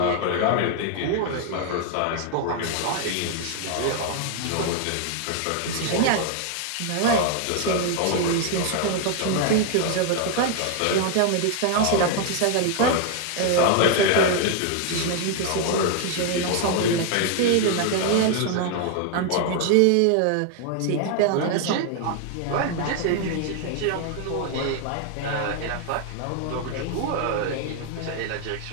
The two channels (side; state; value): both; different; correlation 0.00